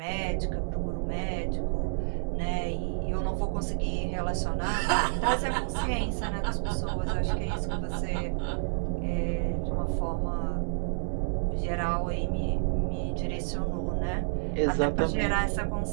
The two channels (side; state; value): left; silent; 58 dB below the other